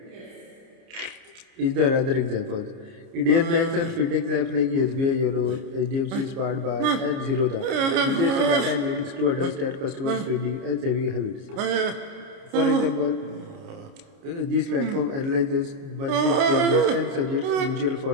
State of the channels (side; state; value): left; late; 29 ms